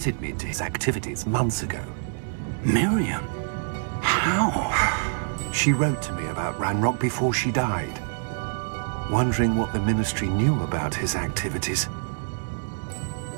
me to his activities months ago. Miriam? How? She wrote to me about Ranrock before she died, wondering what the Ministry knew about his activities.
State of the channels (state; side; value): silent; left; digital silence